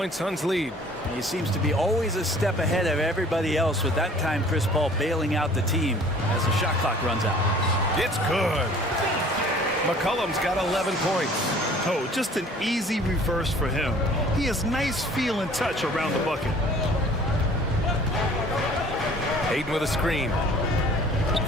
Suns lead. He seems to be always a step ahead of everybody else, with that time Chris Paul bailing out the team as the shot clock runs out. It's good. McCollum's got 11 points. Oh, just an easy reverse for him. He has nice feel and touch around the bucket. Hayden with a screen.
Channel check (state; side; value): normal; both; correlation 0.51